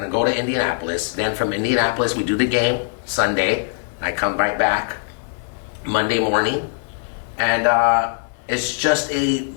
go to Indianapolis. Then from Indianapolis, we do the game Sunday. I come right back Monday morning, and it's just a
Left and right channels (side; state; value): right; silent; 65 dB below the other